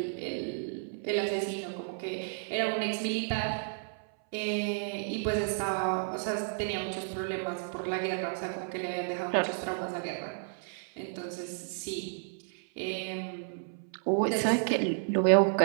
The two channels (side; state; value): left; silent; 57 dB below the other